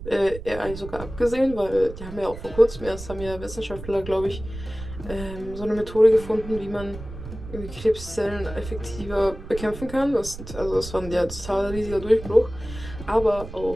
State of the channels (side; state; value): right; noise; rumble, 12 dB below the sound